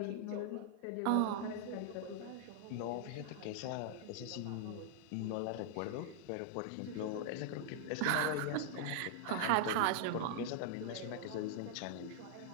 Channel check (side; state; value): both; different; correlation -0.01